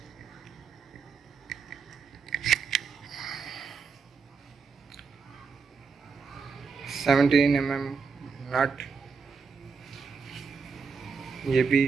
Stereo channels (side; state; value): left; quieter; 5.3 dB